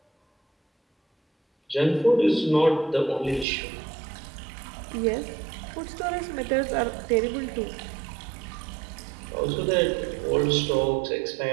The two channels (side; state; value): left; drops out; at 3.5 s